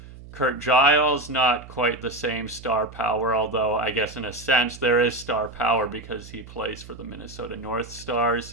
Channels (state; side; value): noise; right; hum, 17 dB below the sound